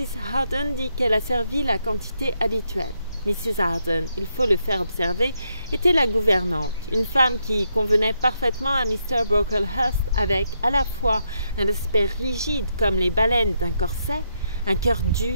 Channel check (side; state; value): both; inverted; correlation -0.79